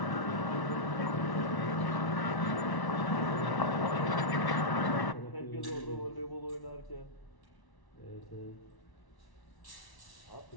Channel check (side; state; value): right; late; 1.1 ms